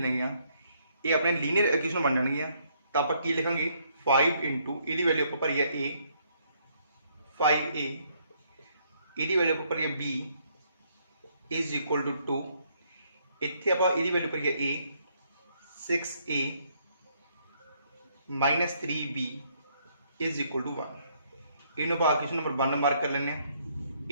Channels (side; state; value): both; inverted; correlation -0.70